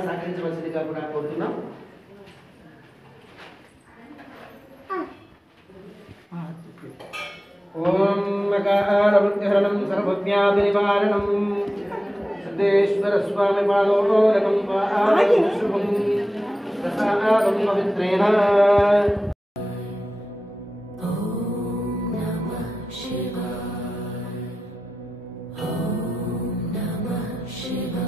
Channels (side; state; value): both; normal; correlation 0.93